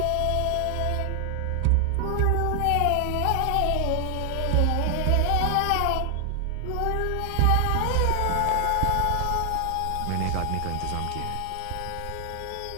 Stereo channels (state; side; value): different; both; correlation 0.00